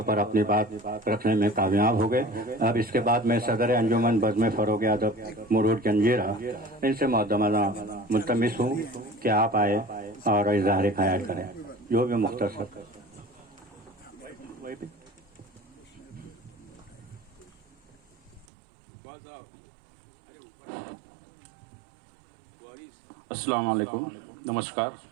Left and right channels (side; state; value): left; drops out; at 18.4 s